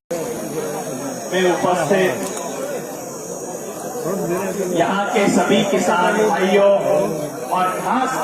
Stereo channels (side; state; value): both; identical; correlation 1.00